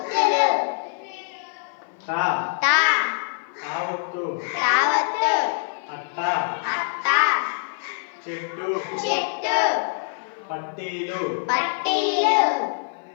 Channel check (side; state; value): right; silent; 55 dB below the other